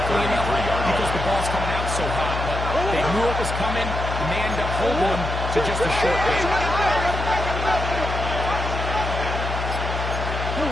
enough because the ball's coming out so hot. But they knew it was coming, and they end up holding him to just a short game.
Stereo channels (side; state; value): left; noise; hum, 4 dB below the sound